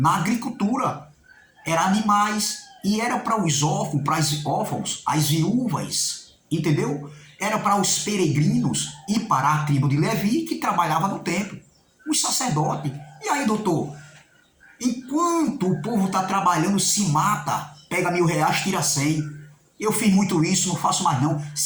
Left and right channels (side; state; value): both; identical; correlation 1.00